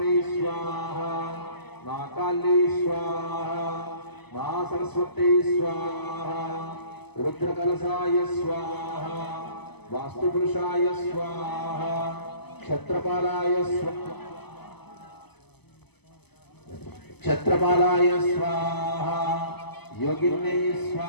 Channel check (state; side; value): late; right; 0.98 ms